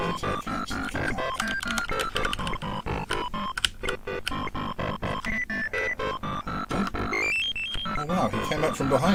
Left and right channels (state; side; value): identical; both; correlation 1.00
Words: I catch the cat? Oh wow, he came up from